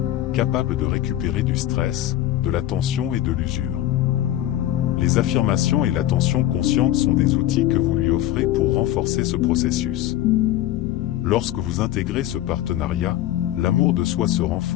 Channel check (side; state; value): right; quieter; 13.4 dB